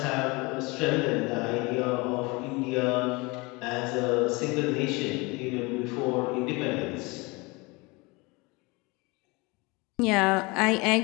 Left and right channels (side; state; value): right; quieter; 25.6 dB